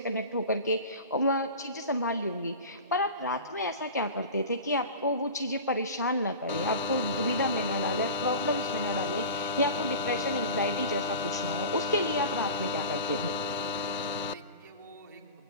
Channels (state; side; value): inverted; both; correlation -0.34